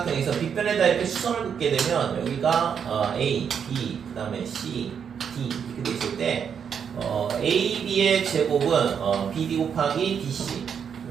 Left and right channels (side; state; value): left; quieter; 7.4 dB